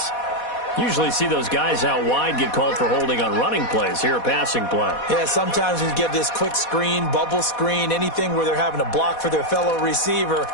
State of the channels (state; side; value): late; right; 4.1 ms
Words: Usually see those guys out wide get called for holding on running plays. Here, a passing play. Yeah, sometimes when you get this quick screen, bubble screen, anything where they're having to block for their fellow receiver,